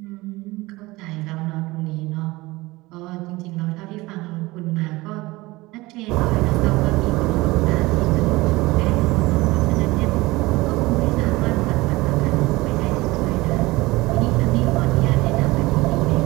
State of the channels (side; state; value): left; quieter; 20.8 dB